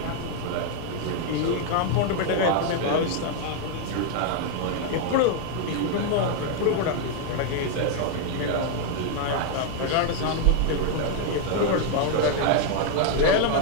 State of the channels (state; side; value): different; both; correlation 0.00